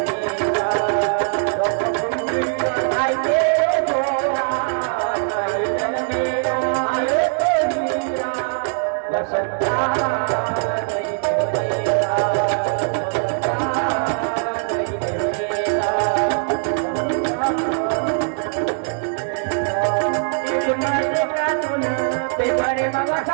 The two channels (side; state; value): left; silent; digital silence